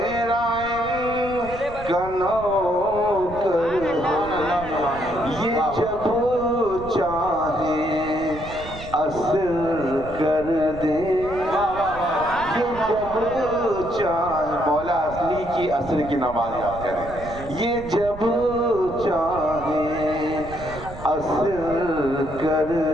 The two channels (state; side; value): noise; right; rumble, 13 dB below the sound